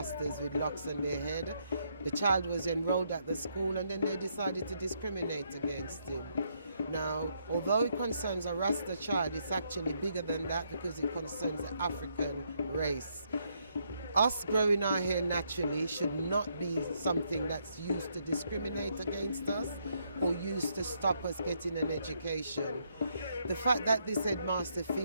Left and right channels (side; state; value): both; inverted; correlation -0.75